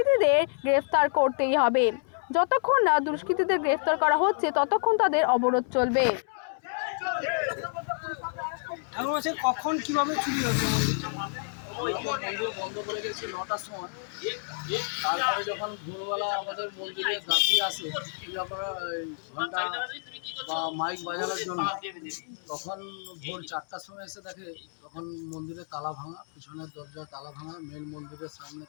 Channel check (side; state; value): right; silent; 59 dB below the other